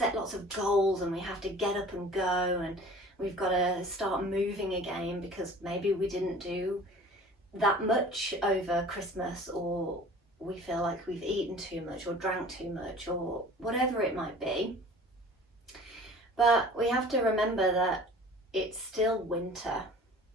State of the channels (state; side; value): normal; both; correlation 0.45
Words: lots of goals and we have to get up and go and we've got to start moving again because maybe we didn't do that much over Christmas, or we feel like we've eaten too much or drank too much or whatever it might be. But we have to remember that it's still winter,